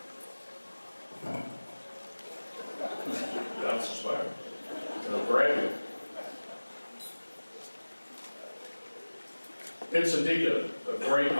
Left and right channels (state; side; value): inverted; both; correlation -1.00